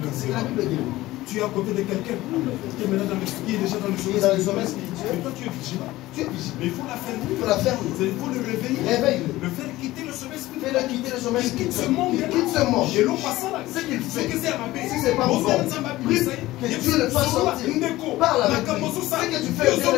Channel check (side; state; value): right; quieter; 17.3 dB